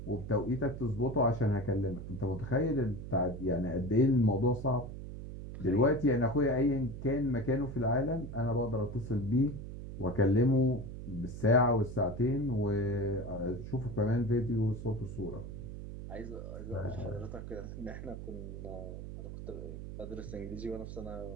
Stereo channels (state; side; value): noise; right; hum, 9 dB below the sound